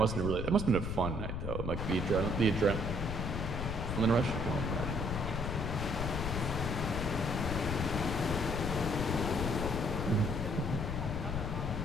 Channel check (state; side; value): noise; left; rumble, 3 dB below the sound